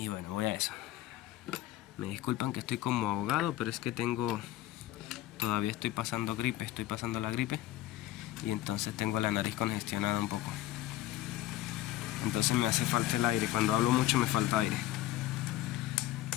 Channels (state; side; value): quieter; right; 14.7 dB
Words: bueno, voy a eso. Me disculpan que estoy como ahogado, pero es que todavía estoy pasando la gripe, y entonces tengo la nariz congestionada un poco. Entonces me hace falta el aire, cuando hablo mucho me falta aire.